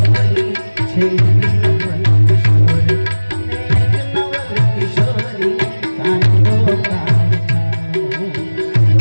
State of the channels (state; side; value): inverted; both; correlation -1.00